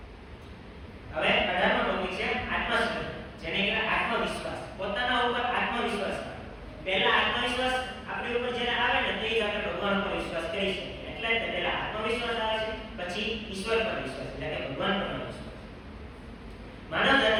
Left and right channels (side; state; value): both; identical; correlation 1.00